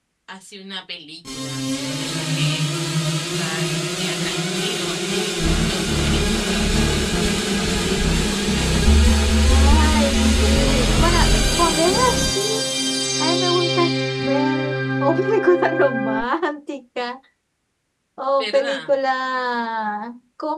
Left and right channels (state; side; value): identical; both; correlation 1.00